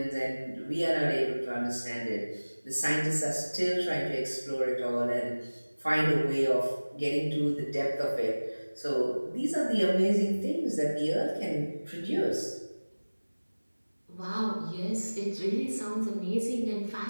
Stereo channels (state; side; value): inverted; both; correlation -1.00